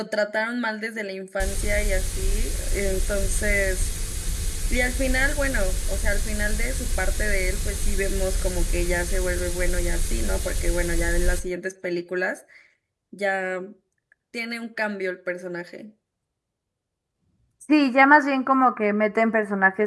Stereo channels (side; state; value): both; identical; correlation 1.00